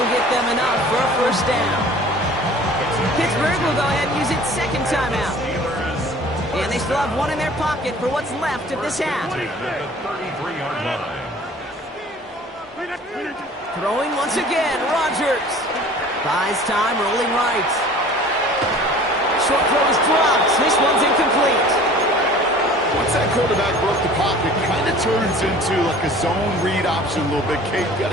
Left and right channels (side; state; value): both; normal; correlation 0.47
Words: get them enough for a first down. Pittsburgh will go ahead and use its second timeout. And they still have one in their pocket for what's left of this half. At the 33-yard line. Throwing once again, Rodgers. Buys time, rolling right. Short throw is dropped. This one's incomplete. Once that quarterback broke the pocket, kind of turns into like a zone read option a little bit. Kate, you got